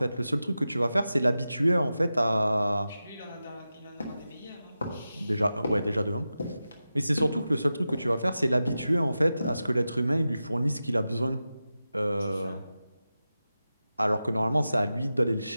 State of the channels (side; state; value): both; inverted; correlation -0.93